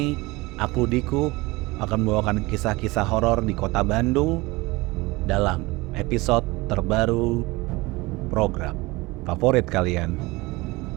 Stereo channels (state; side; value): quieter; left; 22.3 dB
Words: aku Diku akan membawakan kisah-kisah horor di kota Bandung dalam episode terbaru program favorit kalian.